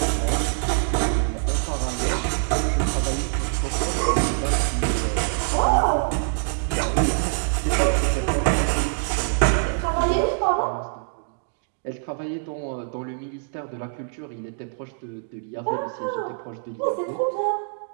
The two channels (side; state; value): left; silent; digital silence